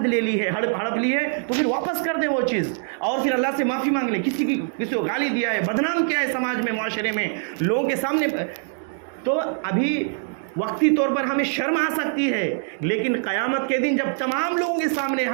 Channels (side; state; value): left; silent; 63 dB below the other